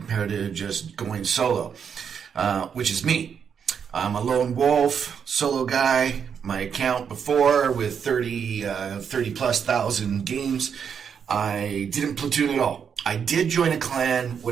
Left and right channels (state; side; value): quieter; left; 7.2 dB